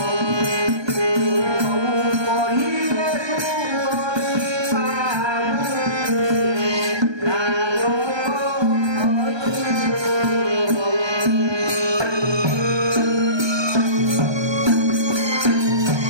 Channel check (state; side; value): late; left; 1.2 ms